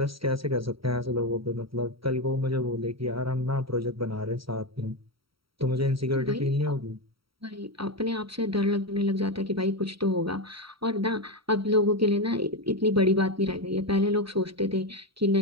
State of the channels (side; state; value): left; late; 0.75 ms